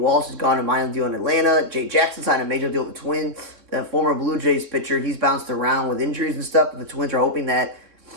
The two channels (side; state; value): left; late; 3.6 ms